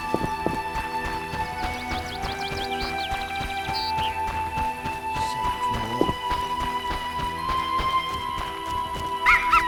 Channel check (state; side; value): identical; both; correlation 1.00